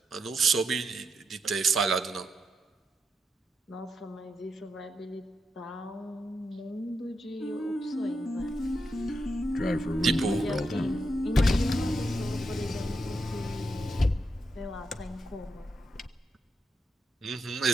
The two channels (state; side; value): normal; both; correlation 0.84